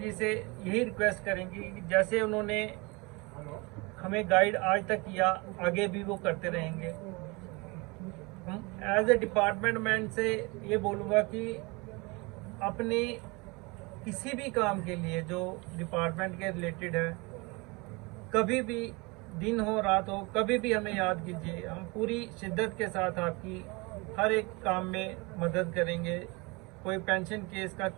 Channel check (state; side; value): quieter; left; 26.9 dB